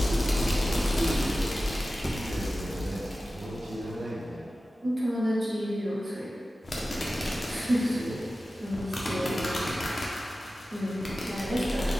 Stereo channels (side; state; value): both; normal; correlation 0.95